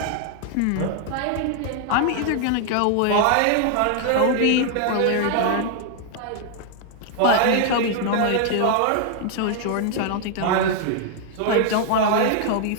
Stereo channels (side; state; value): both; different; correlation 0.00